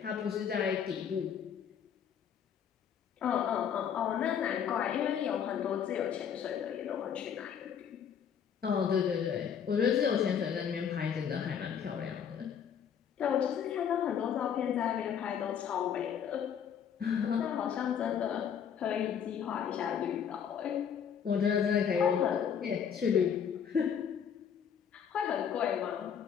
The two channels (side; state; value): right; quieter; 8.0 dB